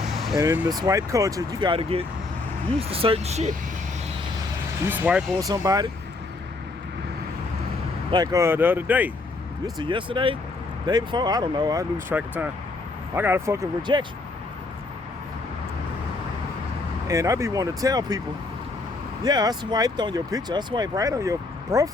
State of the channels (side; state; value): right; quieter; 3.4 dB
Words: And in the swipe culture, you gotta get used to certain shit. You swipe on somebody, Like the other day. This is yesterday? Day before? I don't know. I lose track of time. I got a fucking rejection. And I be wanting to tell people, yeah, I swiped on your picture. I swiped right on your